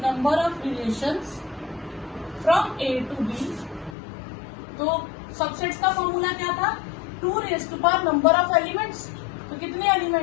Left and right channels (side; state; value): right; drops out; at 4.0 s